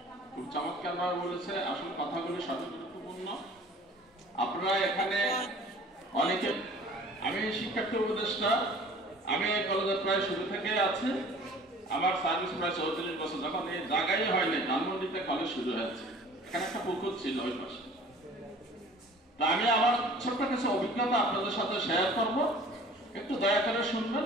খুব চমৎকার ভাবে বলেছে। আসলে কথাগুলি সবই গুরুত্বপূর্ণ। আপনারা এখানে অনেকে, আমি শিক্ষার্থী উপদেষ্টা, আমি এই কলেজের প্রায় শুরু থেকে আছি। আমার সার্ভিস প্রায় 34 বছর। যখন এই জায়গায় হয়নি, ধানমন্ডিতে কলেজ শুরু হয়েছে, এখানে একটা পুকুর ছিল ওই পাশে। তা আমি আমার ছোট্ট কিছু অভিজ্ঞতা আপনাদের সাথে শেয়ার করব, একটু দয়া করে শুনবেন।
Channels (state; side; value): normal; both; correlation 0.48